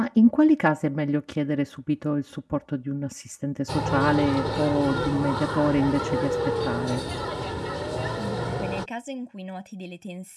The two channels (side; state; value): both; identical; correlation 1.00